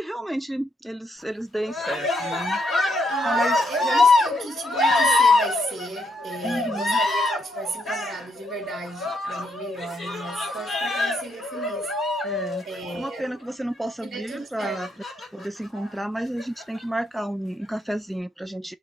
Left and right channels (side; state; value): both; normal; correlation 0.77